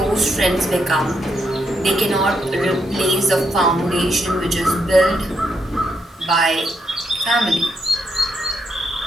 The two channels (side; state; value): both; normal; correlation 0.78